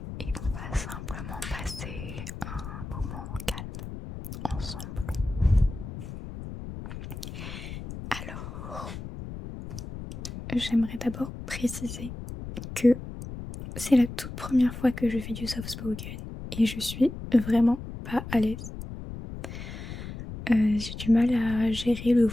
Et on va simplement passer un moment calme ensemble. Alors, j'aimerais d'abord préciser que c'est la toute première fois que je fais du soft spoken et je suis vraiment pas à l'aise. J'ai du mal à gérer le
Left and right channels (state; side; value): noise; left; rumble, 9 dB below the sound